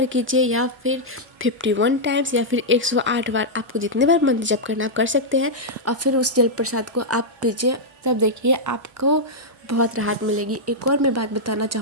कीजिए, या फिर 51 टाइम्स, या फिर 108 बार, आपको जितने बार मंत्र जप करना आप कर सकते हैं। और फिर उस जल प्रसाद को आप पीजिए, तब देखिए आपको बहुत राहत मिलेगी। एक और मैं बात बताना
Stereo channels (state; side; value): normal; both; correlation -0.06